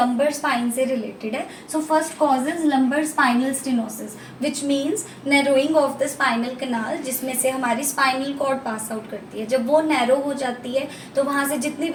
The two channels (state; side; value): identical; both; correlation 1.00